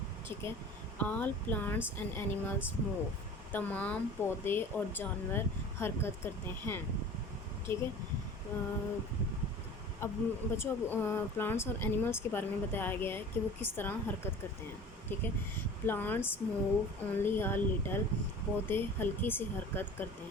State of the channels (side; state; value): both; normal; correlation 0.41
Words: ٹھیک ہے؟ آل پلانٹس اینڈ اینیملس موو، تمام پودے اور جانور حرکت کرتے ہیں، ٹھیک ہے؟ اب بچوں، پلانٹس اور اینیملس کے بارے میں بتایا گیا ہے کہ وہ کس طرح حرکت کرتے ہیں، ٹھیک ہے؟ Plants move only a little, پودے ہلکی سی حرکت کرتے